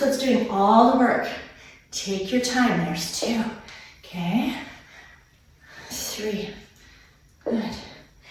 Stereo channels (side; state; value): both; identical; correlation 1.00